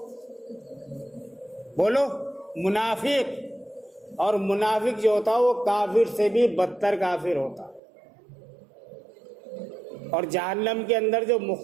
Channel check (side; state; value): left; drops out; at 7.8 s